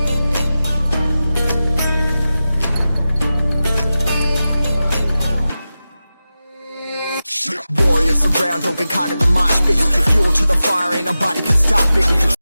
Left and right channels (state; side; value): inverted; both; correlation -0.94